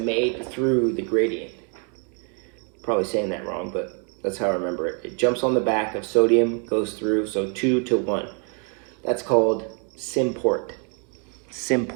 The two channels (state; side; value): quieter; left; 39.0 dB